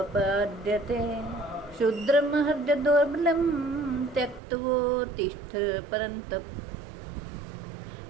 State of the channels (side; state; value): left; drops out; at 4.4 s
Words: शूद्रमहर्य दौर्बलं त्यक्त्वोत्तिष्ठ परन्तप।